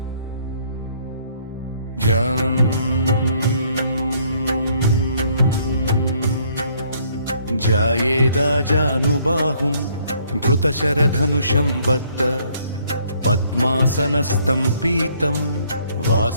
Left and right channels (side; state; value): both; inverted; correlation -0.65